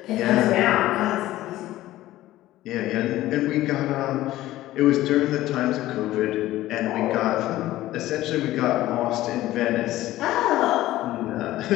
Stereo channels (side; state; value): right; quieter; 15.6 dB